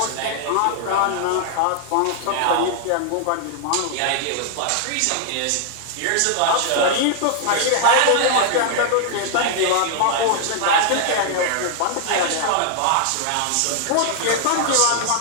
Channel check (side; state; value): both; different; correlation -0.01